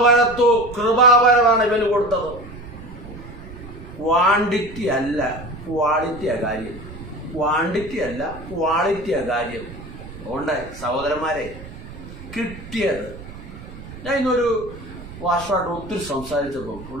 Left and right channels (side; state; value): right; noise; rumble, 14 dB below the sound